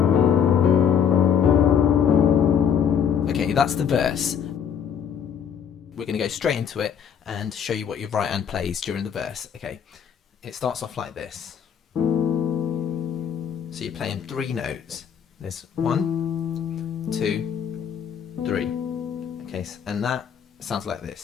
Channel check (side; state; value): right; quieter; 7.9 dB